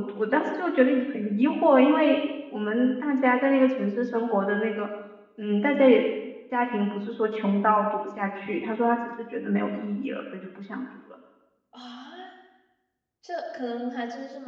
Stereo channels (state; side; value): identical; both; correlation 1.00